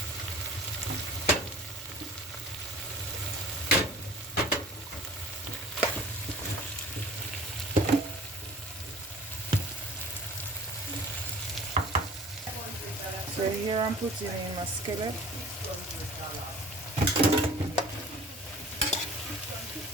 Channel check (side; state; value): both; normal; correlation 0.45